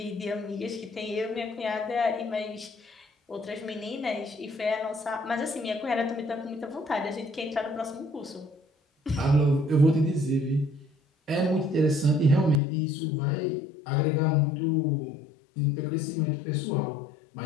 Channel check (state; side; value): drops out; right; at 12.6 s